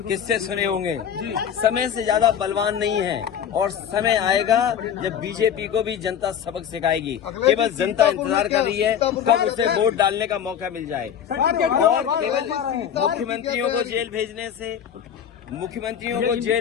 किस्से सुने होंगे। समय से ज्यादा बलवान नहीं है और समय आएगा जब बीजेपी को भी जनता सबक सिखाएगी। केवल जनता इंतजार कर रही है कब उसे वोट डालने का मौका मिल जाए। और केवल मुख्यमंत्रियों को जेल भेजने से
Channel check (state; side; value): quieter; right; 8.7 dB